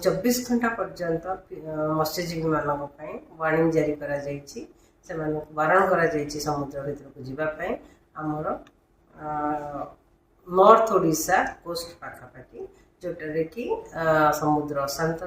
घंटा पर्यंत मत्स्यजीवी मानक वार्निंग जारी करा जायछि से बारण करा जायछि समुद्र भीतर को जीवाई आमर नॉर्थ ओडिशा कोस्ट पाखापाखि जोटारे कि समुद्र अशांत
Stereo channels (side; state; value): both; identical; correlation 1.00